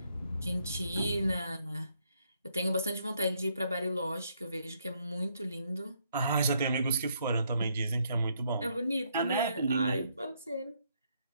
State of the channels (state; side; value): inverted; both; correlation -0.73